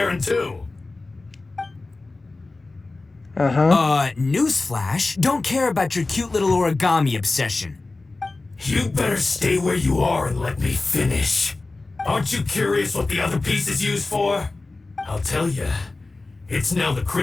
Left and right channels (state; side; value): quieter; right; 3.4 dB